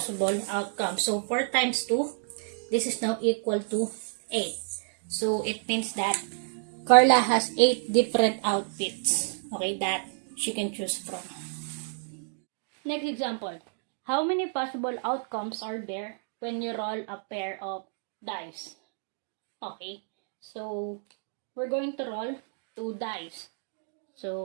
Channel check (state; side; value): silent; left; digital silence